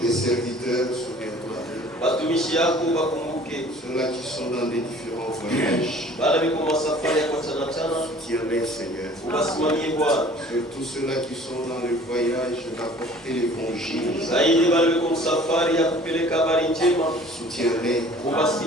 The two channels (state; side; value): normal; both; correlation 0.50